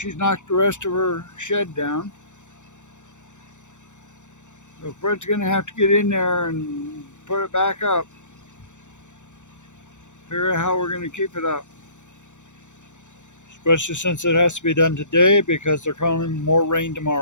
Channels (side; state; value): right; late; 0.85 ms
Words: knocked the rest of her shed down. So Fred's going to have to get in there and put it back up. Figure out how we're going to keep it up. Especially since it has to be done today because they're calling more rain